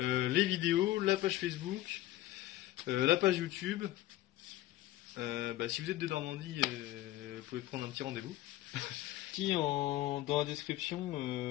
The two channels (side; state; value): right; quieter; 15.3 dB